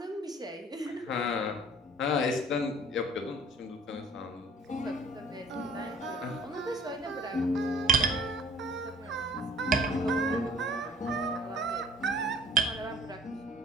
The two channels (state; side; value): normal; both; correlation 0.51